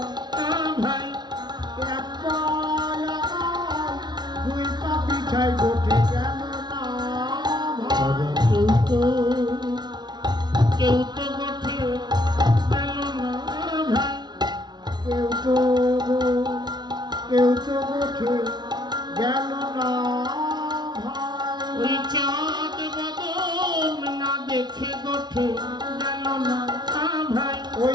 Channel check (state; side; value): late; left; 0.20 ms